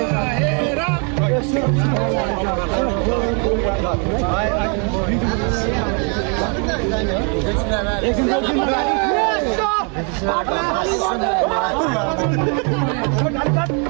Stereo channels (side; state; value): left; quieter; 38.0 dB